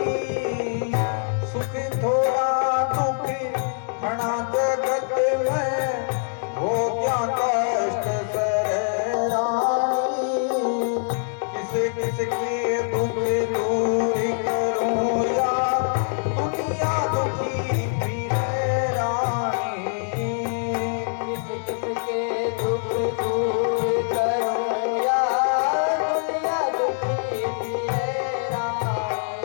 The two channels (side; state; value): right; silent; digital silence